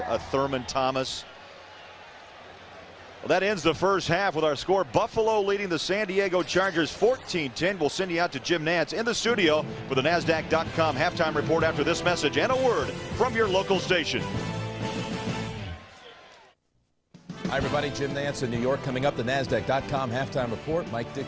a Thurman Thomas. Well, that ends the first half with our score. Buffalo leading the San Diego Chargers 14-10. We'll send you out to Jim Nantz in the studio for the NASDAQ.com halftime report after this message and a word from your local station. Hi, everybody. Jim Nantz in New York. Coming up, the NASDAQ.com halftime report. Mike Dick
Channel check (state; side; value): identical; both; correlation 1.00